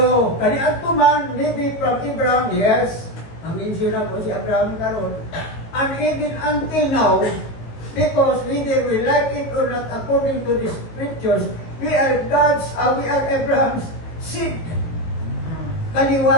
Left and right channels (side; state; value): right; late; 18 ms